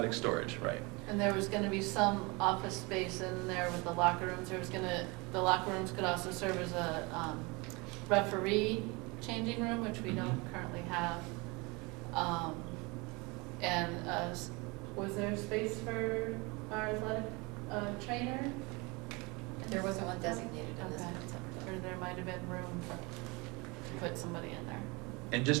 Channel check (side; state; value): left; quieter; 26.7 dB